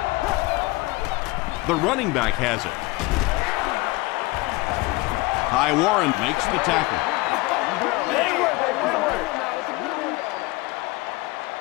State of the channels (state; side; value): quieter; right; 22.3 dB